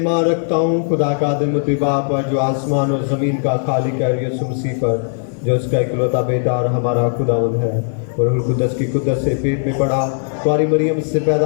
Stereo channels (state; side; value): silent; right; 55 dB below the other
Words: रखता हूँ खुदा का आदिमुत्ती बाप पर, जो आसमान और ज़मीन का खालिक है, यीशु मसीह पर, जो इसका इकलौता बेटा और हमारा खुदावंद है, और रूह कुदस की कुदरत से पेट में पड़ा, कुंवारी मरियम से